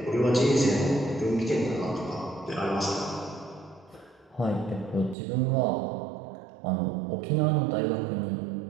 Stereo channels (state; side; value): drops out; left; at 5.2 s